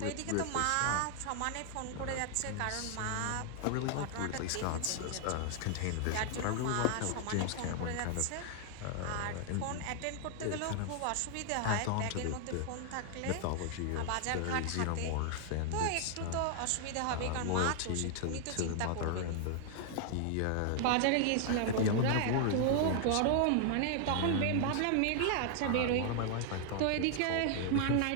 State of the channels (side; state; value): both; different; correlation 0.00